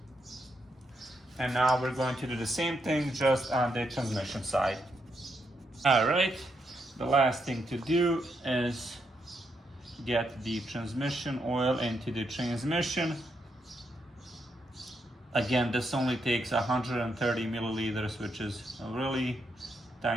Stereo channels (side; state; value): both; normal; correlation 0.80